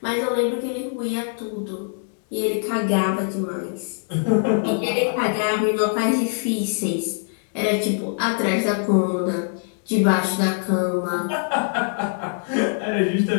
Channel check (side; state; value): right; silent; digital silence